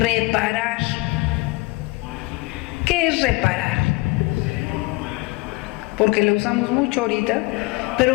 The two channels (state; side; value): quieter; right; 23.7 dB